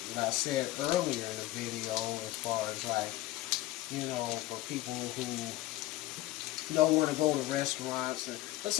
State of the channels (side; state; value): right; quieter; 16.8 dB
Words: said earlier in the video as far as like, for people who don't want to go to restaurants. But